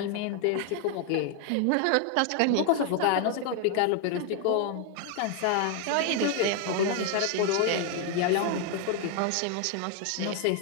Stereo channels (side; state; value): both; different; correlation 0.00